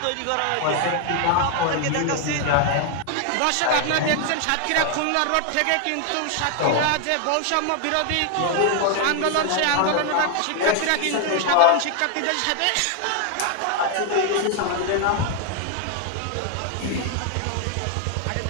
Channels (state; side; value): different; both; correlation 0.00